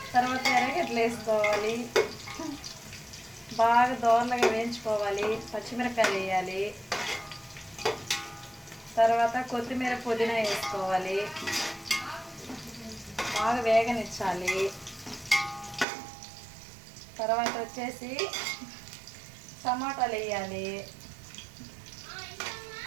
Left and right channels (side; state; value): left; drops out; at 15.9 s